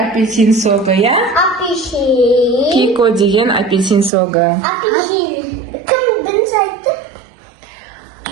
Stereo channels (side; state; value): left; drops out; at 4.1 s